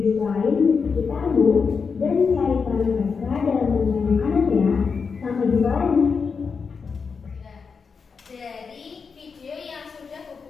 lain di sekitarmu dan cari peran mereka dalam rantai makanan ya. Sampai jumpa lagi. Dari video yang sudah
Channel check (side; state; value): right; quieter; 5.4 dB